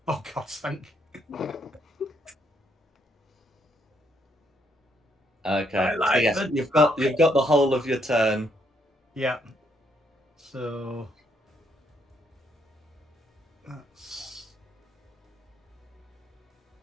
Oh God, thank. Okay. I like so yes, the you've got the whole of your turn. Yeah. So that's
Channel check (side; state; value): both; normal; correlation 0.73